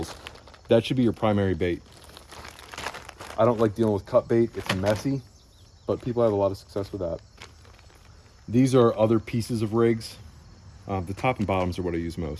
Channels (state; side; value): identical; both; correlation 1.00